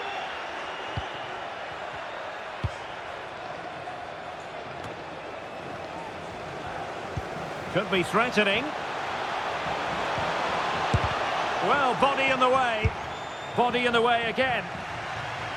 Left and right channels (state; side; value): identical; both; correlation 1.00